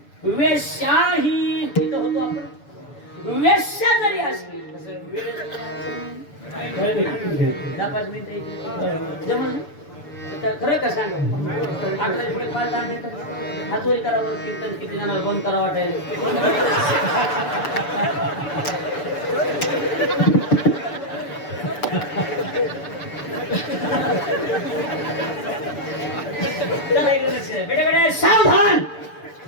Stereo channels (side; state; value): right; late; 6.9 ms